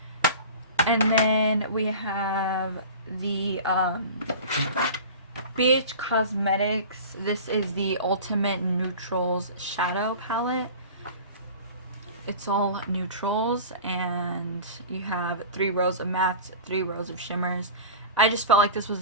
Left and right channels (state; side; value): inverted; both; correlation -0.36